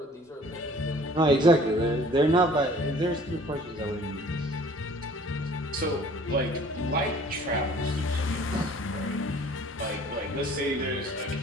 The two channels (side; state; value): both; normal; correlation 0.52